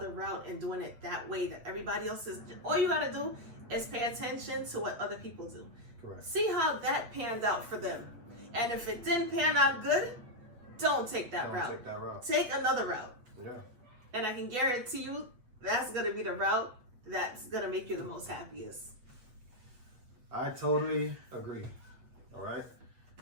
route and doing it that way that everybody else is. All you got to do is pay attention to what other people do. Correct. See how that panned out for them. And if it didn't pan out good, don't take that route. Take that route. Take another route. Yeah. And I can guarantee you that's going to be the route that's going to make you the most happiest. I totally agree. All right.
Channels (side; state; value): left; late; 8.1 ms